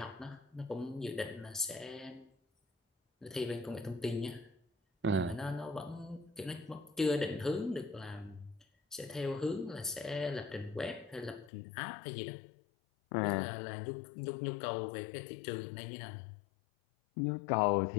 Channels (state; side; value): drops out; right; at 11.5 s